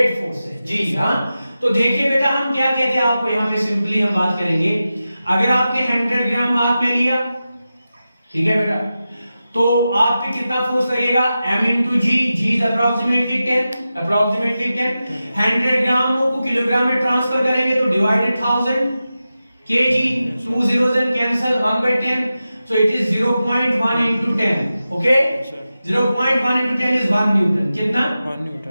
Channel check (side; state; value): both; inverted; correlation -0.93